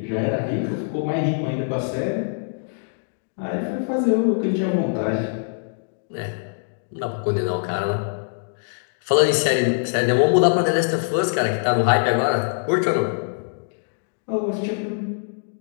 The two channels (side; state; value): right; silent; digital silence